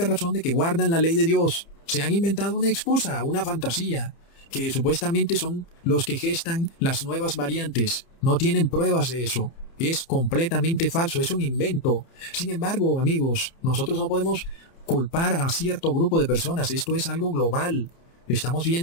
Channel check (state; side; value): late; right; 30 ms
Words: razón de que guardan la ley de Dios. Se han inventado una excusa, una fantasía, que supuestamente son los que gestan las nuevas variantes. No tienen pruebas de eso. Es completamente falso, es un invento. Sin embargo, amigos, nosotros no podemos culpar a cierto grupo de personas. Esto es algo global. Estamos